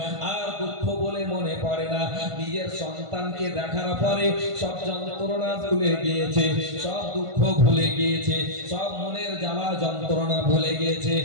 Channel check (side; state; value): left; late; 1.5 ms